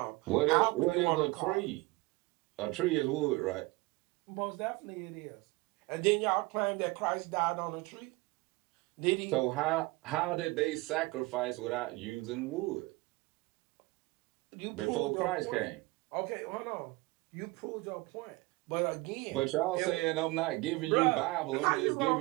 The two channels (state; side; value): quieter; left; 23.0 dB